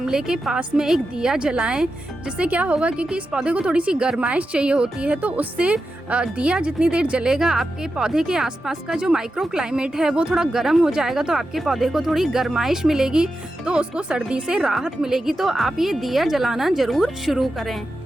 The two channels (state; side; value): normal; both; correlation 0.90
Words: के पास में एक दिया जलाएं, जिससे क्या होगा, क्योंकि इस पौधे को थोड़ी सी गर्माइश चाहिए होती है, तो उससे दिया जितनी देर जलेगा आपके पौधे के आसपास का जो माइक्रो क्लाइमेट है वो थोड़ा गर्म हो जाएगा, तो आपके पौधे को थोड़ी गर्माइश मिलेगी, तो उसको सर्दी से राहत मिलेगी। तो आप ये दिया जलाना ज़रूर शुरू करें।